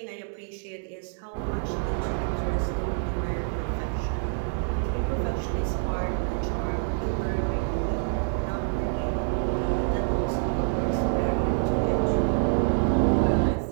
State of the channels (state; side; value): silent; left; 60 dB below the other